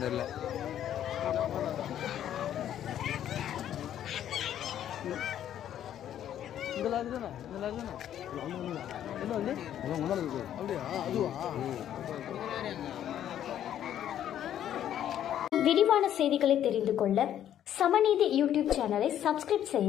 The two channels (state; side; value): quieter; right; 10.8 dB